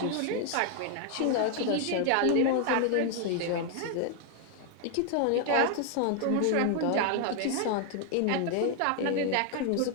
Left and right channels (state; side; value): different; both; correlation 0.00